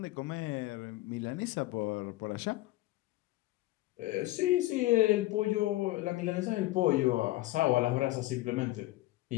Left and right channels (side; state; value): right; quieter; 17.8 dB